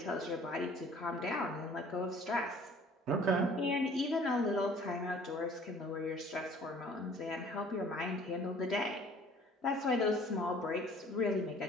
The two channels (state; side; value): normal; both; correlation 0.52